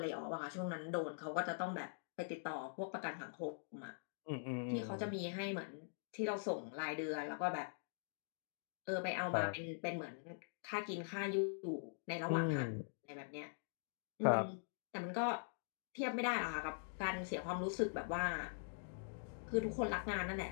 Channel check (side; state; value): right; silent; digital silence